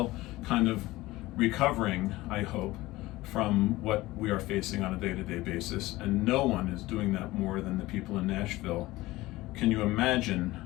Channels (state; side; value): quieter; right; 18.6 dB